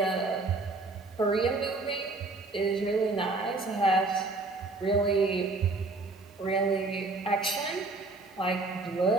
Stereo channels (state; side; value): quieter; left; 3.4 dB